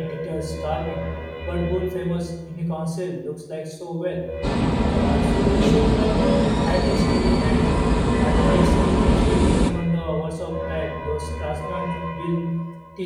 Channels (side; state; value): both; identical; correlation 1.00